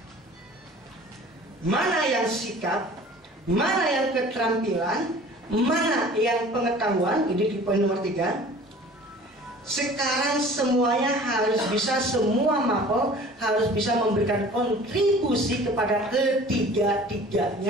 Mana yang sikap, mana yang keterampilan, mana yang pengetahuan, ini di poin nomor 3. Sekarang semuanya harus bisa, semua MAPO harus bisa memberikan kontribusi kepada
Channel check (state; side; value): normal; both; correlation 0.46